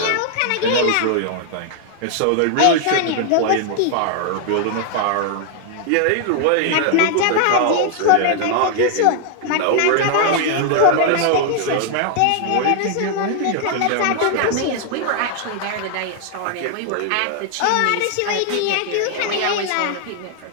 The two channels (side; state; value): both; different; correlation 0.00